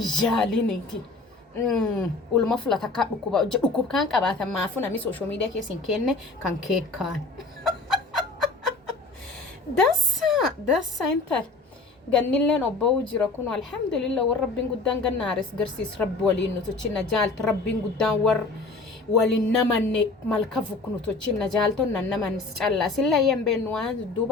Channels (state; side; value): quieter; right; 3.5 dB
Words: ulma fulata ka dhukub kan qabaatan maafu nami social media keessin kenne kan keekkaan dassa intal ganilleen obba'uu jira kun alhamdulillah war rabbiin guddaan gannaaris garsiis rabbi waliin nutuchina jaalta rabbiin guddaan war waliin namanne malka fuknu tuchina jaalton nan naman calla silla yembeenu waan